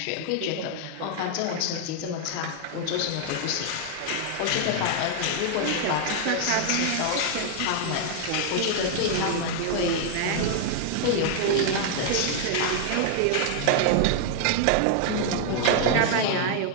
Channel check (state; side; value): different; both; correlation 0.00